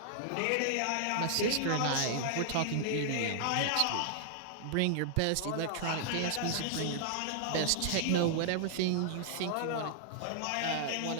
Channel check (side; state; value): both; different; correlation -0.01